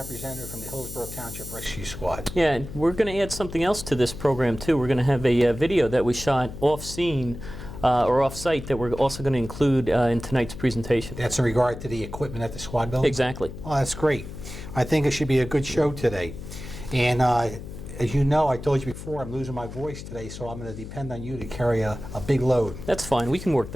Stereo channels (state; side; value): noise; left; hum, 11 dB below the sound